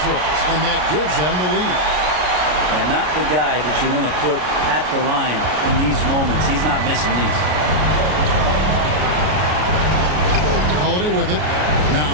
throws, and that gives them the lead. And not the guy that you want to put at the line in these moments. He's not missing these. Holiday with it.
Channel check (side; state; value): left; late; 33 ms